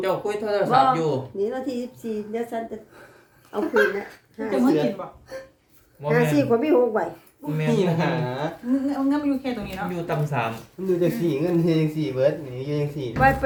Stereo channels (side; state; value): both; identical; correlation 1.00